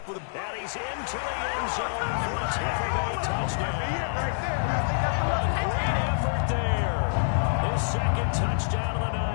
with a... And he's into the end zone for a Tampa Bay touchdown. A great effort there. His 2nd touchdown of the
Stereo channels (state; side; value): silent; right; 60 dB below the other